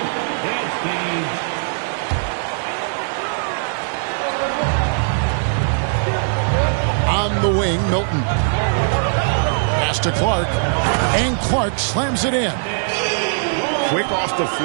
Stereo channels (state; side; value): silent; left; digital silence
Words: On the wing, Milton. Pass to Clark. And Clark slams it in. Quick off the